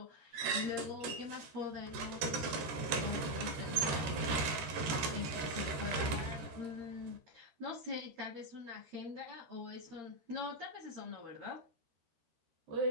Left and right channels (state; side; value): late; left; 13 ms